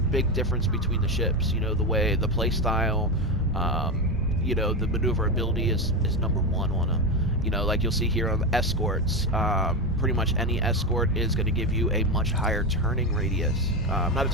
difference between the ships. You know, the play style. You know, the maneuverability is number 1 on them. You know, like you'll see here on the escorts, pretty much any escort is going to give you a much higher turning radius. Not a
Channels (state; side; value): normal; both; correlation 0.15